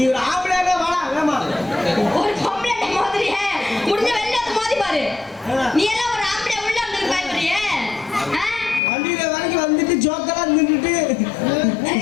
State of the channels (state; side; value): drops out; right; at 8.8 s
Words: ஒரு ஆம்பளையானே வாடா வேமா. ஒரு பொம்பளை மாதிரியே முடிஞ்ச வெளில வந்து மோதி பாரு. நீ எல்லாம் ஒரு ஆம்பளை உள்ள வந்து பயப்படுறியே? வண்டியில வரைக்கும் வந்துட்டு ஜோக்கெல்லாம் நின்றுட்டு